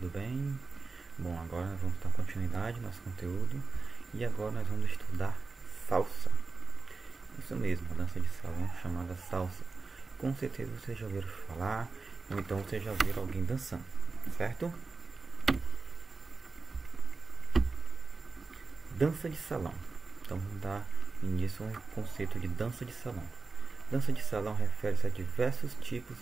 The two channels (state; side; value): quieter; left; 4.1 dB